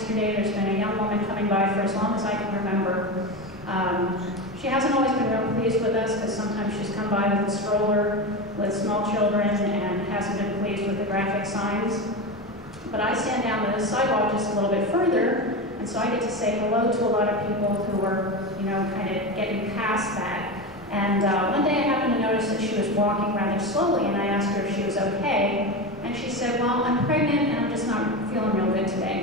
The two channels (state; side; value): normal; both; correlation 0.21